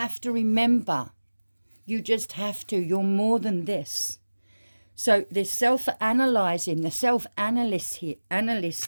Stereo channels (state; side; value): inverted; both; correlation -1.00